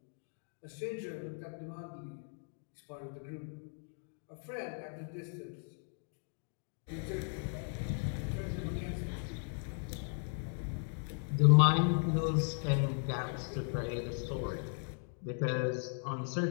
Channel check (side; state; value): right; silent; 53 dB below the other